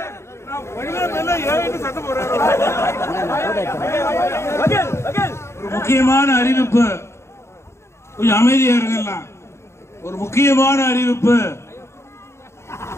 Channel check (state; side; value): late; right; 0.13 ms